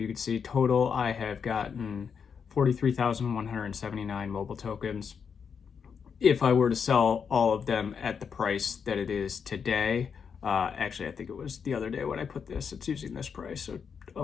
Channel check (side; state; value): right; quieter; 6.6 dB